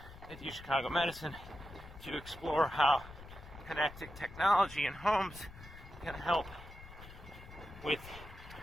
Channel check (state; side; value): noise; left; rumble, 16 dB below the sound